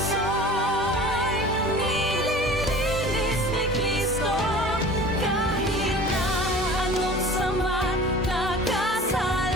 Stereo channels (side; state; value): both; normal; correlation 0.42